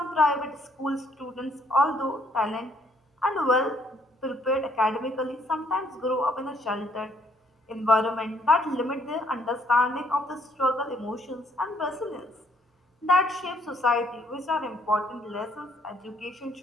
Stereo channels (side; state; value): both; normal; correlation 0.67